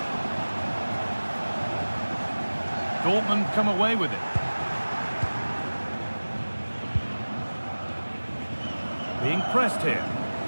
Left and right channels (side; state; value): both; inverted; correlation -1.00